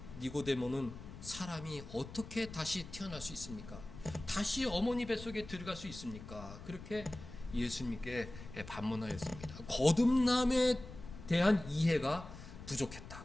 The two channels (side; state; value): left; noise; rumble, 14 dB below the sound